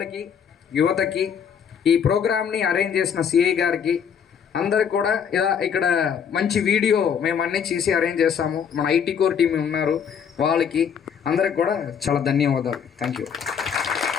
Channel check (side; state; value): right; quieter; 7.5 dB